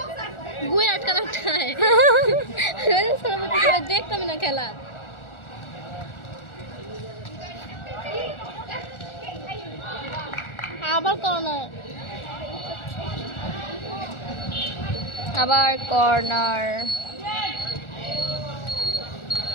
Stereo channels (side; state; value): right; late; 1.4 ms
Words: গুয়ে আটকা আটকায় দেখতাম না খেলা। আবার কর্নার, আবার কর্নার।